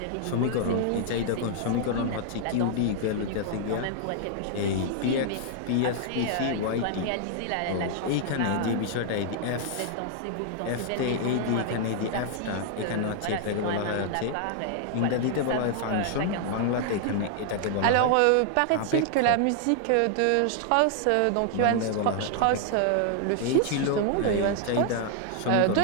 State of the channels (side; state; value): both; different; correlation 0.00